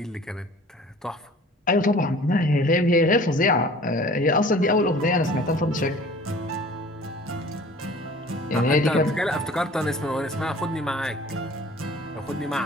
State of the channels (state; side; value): normal; both; correlation 0.47